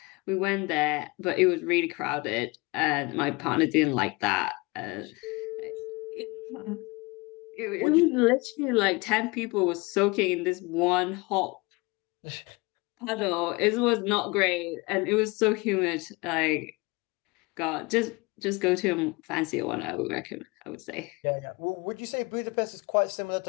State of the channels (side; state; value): right; quieter; 25.7 dB